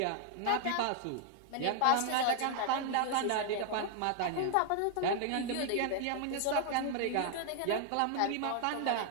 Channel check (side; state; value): both; different; correlation 0.00